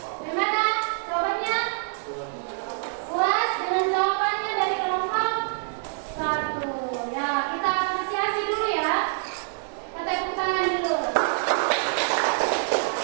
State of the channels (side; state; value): left; silent; digital silence